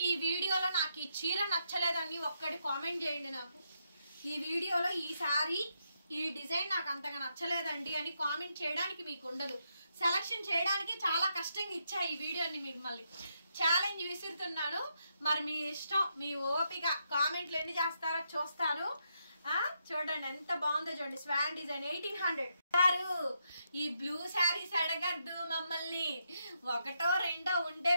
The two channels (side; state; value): both; inverted; correlation -0.80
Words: ఈ వీడియోలో నాకు ఈ చీర నచ్చలేదని ఒక్కటి కామెంట్ చేయండి. నాకు ఈ వీడియోలో ఈ శారీ ఈ డిజైన్ నాకు అంతగా నచ్చలేదండి అని కామెంట్ చేయడానికి మీకు ఉండదు. సెలక్షన్ చేయడానికి చాలా కష్టంగా ఇచ్చా ఈ వీడియోని. మిమ్మల్ని ఛాలెంజ్ విసురుతున్నాను. మరి మీ ఇష్టం, మీ ఓపిక. కామెంట్లు ఎన్ని చేస్తారో చూస్తాను. చూడండి ఎంత బాగుందో చూడండి. Schwann design 1800. ఈ బ్లూ శారీస్ అడగద్దు మమ్మల్ని, ఒకటో రెండో ఉంటే